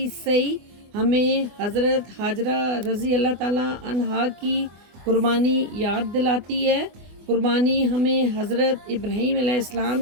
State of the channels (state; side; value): late; left; 24 ms